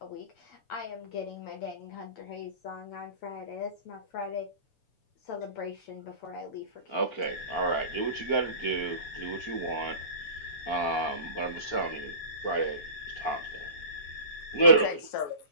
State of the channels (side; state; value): right; late; 7.0 ms